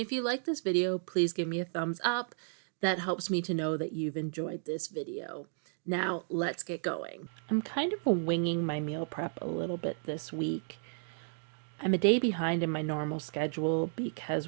you like this video, please give me a thumbs up. That helps me to know that you've enjoyed this video. Now, let's get going. I'm kind of winging my meal prep a little bit this week. I'm a day behind in my normal schedule because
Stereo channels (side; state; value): left; silent; digital silence